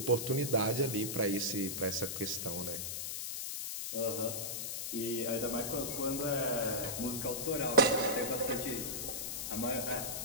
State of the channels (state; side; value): noise; left; hiss, 4 dB below the sound